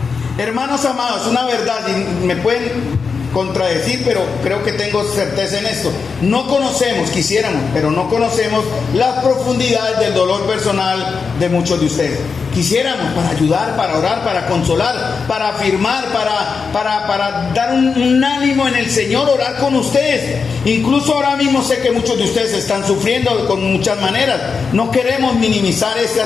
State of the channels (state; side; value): quieter; right; 5.3 dB